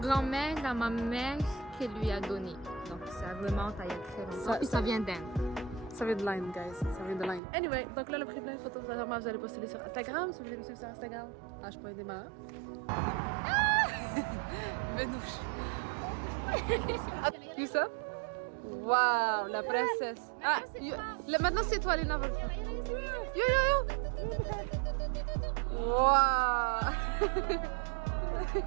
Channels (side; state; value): left; drops out; at 7.4 s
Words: à ma mère qui lui a donné. Donc ça remonte à il y a très longtemps. Puis ça vient d'Inde. Ça vient de Line, guys. Ça vient de Line. Anyway, donc là, on a pris plein de photos. Vraiment, vous allez poster sur Instagram. Si vous voulez me suivre sur Instagram, h.démarre. Benouche. You ça? Waouh, la princesse. Ah, maintenant c'est toi, Lina. Yo. Waouh.